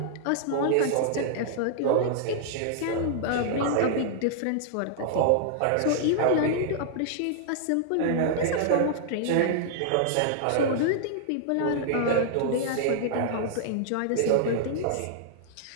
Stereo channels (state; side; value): different; both; correlation -0.01